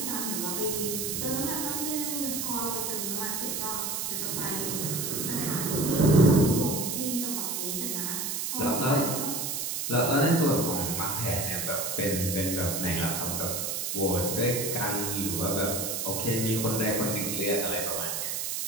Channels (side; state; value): right; noise; hiss, 2 dB below the sound